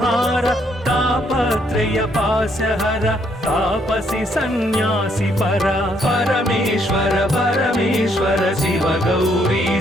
तापत्रय पासहर तापसी सन्यासी परा परमेश्वर परमेश्वर शिव गौरी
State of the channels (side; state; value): both; normal; correlation 0.71